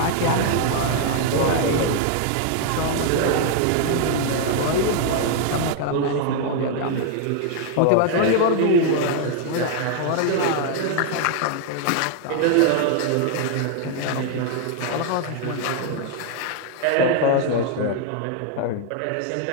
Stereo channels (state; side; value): different; both; correlation 0.00